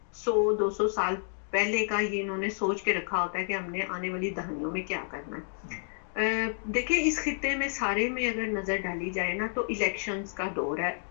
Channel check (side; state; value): right; silent; digital silence